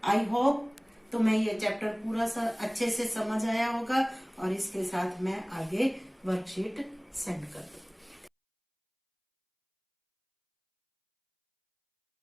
आई होप तुम्हें ये चैप्टर पूरा अच्छे से समझ आया होगा, और इसके साथ मैं आगे वर्कशीट सेंड कर दूँ।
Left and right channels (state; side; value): identical; both; correlation 1.00